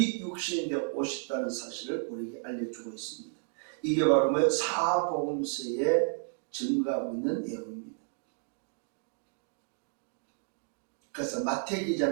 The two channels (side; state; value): left; silent; 56 dB below the other